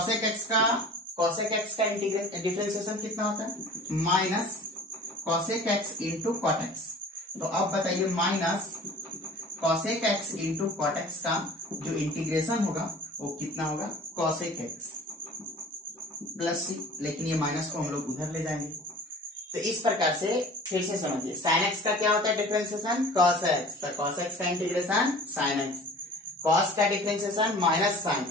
एक्स का डिफरेंशिएशन कितना होता है minus cosec x into cot x. तो अब बताइए minus cosec x into cot x का जो इंटीग्रेशन होगा वो कितना होगा कॉसेक एक्स प्लस सी। लेकिन ये माइनस को हम लोग उधर ले जाएंगे। तो इस प्रकार से फिर से समझिए साइन एक्स का क्या होता है डिफरेंशिएशन कॉस एक्स, तो कॉस एक्स का इंटीग्रेशन साइन एक्स, कॉस का डिफरेंशिएशन माइनस साइन,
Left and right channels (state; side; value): normal; both; correlation 0.43